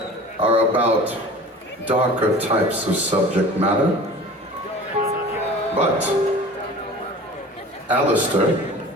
are about darker types of subject matter, but, Alistair,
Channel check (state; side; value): normal; both; correlation 0.40